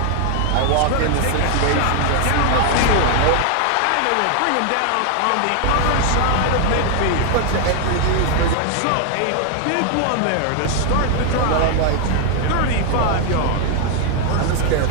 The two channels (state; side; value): different; both; correlation 0.00